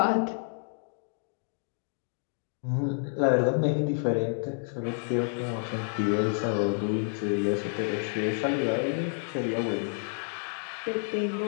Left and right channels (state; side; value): silent; right; digital silence